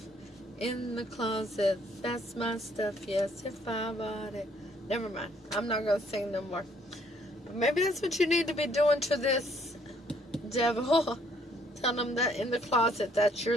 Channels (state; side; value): normal; both; correlation 0.65